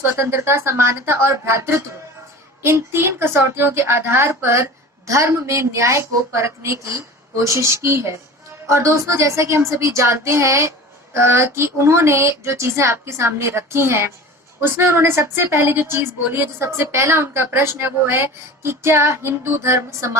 समानता और भ्रातृत्व, इन 3 कसौटियों के आधार पर धर्म में न्याय को परखने की कोशिश की है। और दोस्तों, जैसा कि हम सभी जानते हैं कि उन्होंने जो चीजें आपके सामने रखी हैं, उसमें उन्होंने सबसे पहले जो चीज बोली है, जो सबसे पहला उनका प्रश्न है, वो है कि क्या हिंदू धर्म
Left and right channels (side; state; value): both; normal; correlation 0.37